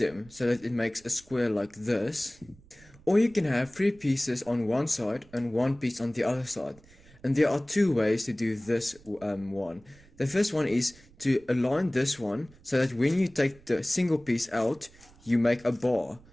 so that it makes a square like this. Or you can have three pieces on one side and one piece on the other side. And there are two ways to do this one. The first one is to align this one so that when you take the single piece out, you make a bar.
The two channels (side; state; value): right; noise; rumble, 26 dB below the sound